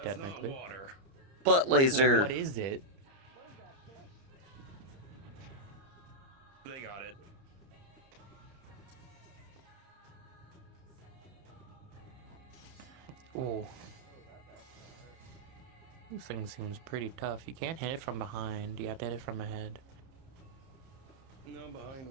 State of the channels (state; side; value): late; left; 30 ms